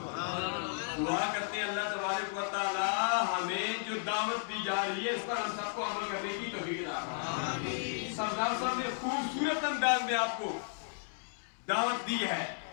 دعا کرتے ہیں اللہ تبارک و تعالی ہمیں جو دعوت دی جا رہی ہے اس پر ہم سب کو عمل کرنے کی توفیق عطا فرمائے۔ سردار صاحب نے خوبصورت انداز میں آپ کو دعوت دی ہے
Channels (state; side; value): silent; right; digital silence